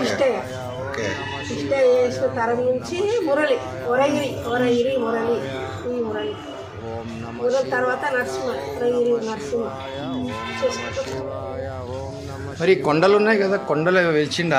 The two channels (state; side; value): identical; both; correlation 1.00